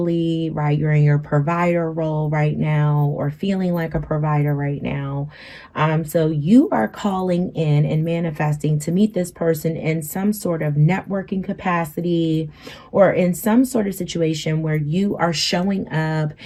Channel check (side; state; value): both; identical; correlation 1.00